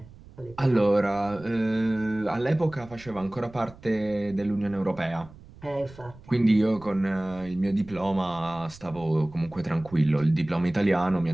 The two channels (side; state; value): right; noise; rumble, 21 dB below the sound